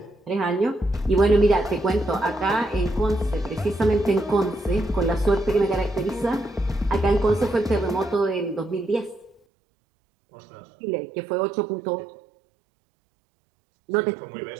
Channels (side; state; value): left; drops out; at 9.4 s